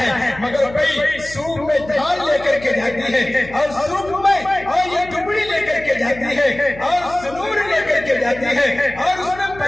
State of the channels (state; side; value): noise; left; hum, 17 dB below the sound